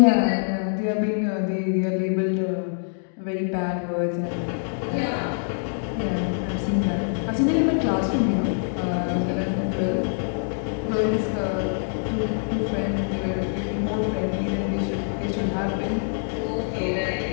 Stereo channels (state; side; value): silent; right; digital silence